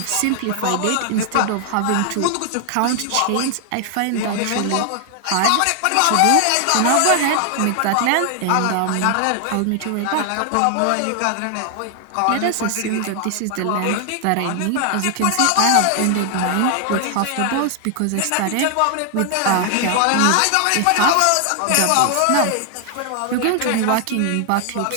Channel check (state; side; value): different; both; correlation 0.00